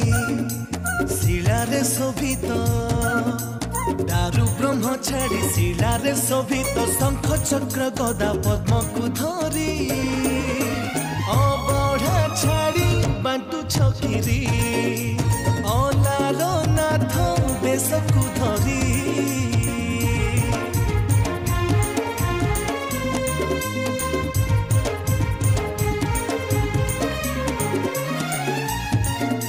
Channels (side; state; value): both; identical; correlation 1.00